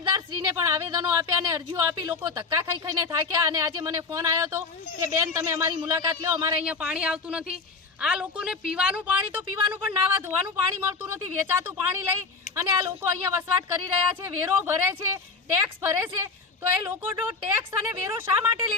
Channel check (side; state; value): right; quieter; 4.5 dB